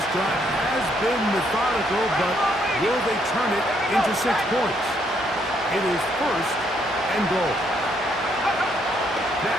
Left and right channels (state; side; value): normal; both; correlation 0.72